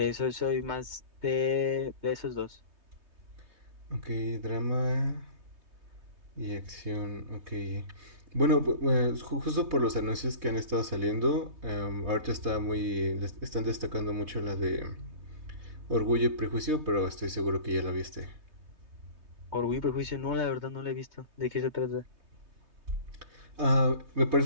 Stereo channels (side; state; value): left; late; 3.2 ms